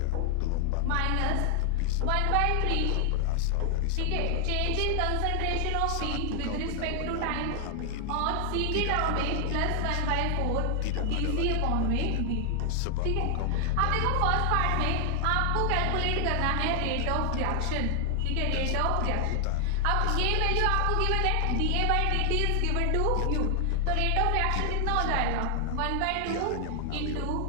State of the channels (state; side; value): different; both; correlation 0.00